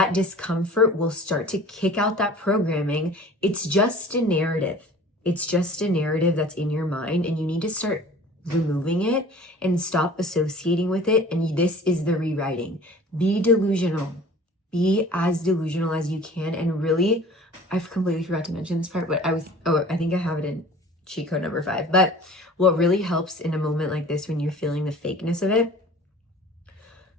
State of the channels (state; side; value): normal; both; correlation 0.45